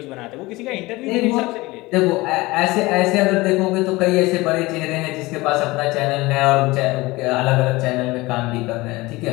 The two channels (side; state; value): right; quieter; 21.2 dB